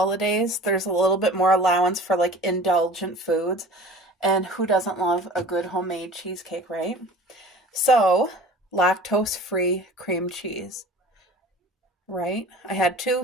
there's a little bit more allowance for like indulgent foods. And who doesn't love a good homemade cheesecake, right? So, lactose-free cream cheese. Right? I had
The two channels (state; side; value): normal; both; correlation 0.42